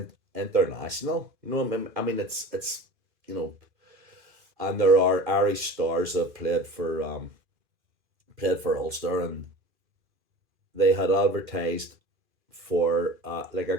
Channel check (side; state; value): left; late; 2.4 ms